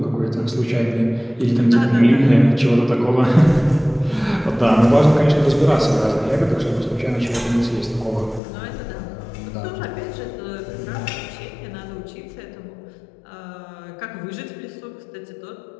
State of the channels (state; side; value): drops out; right; at 8.4 s